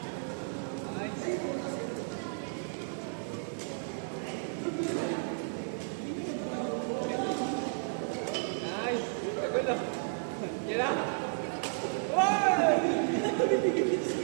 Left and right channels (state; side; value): silent; left; digital silence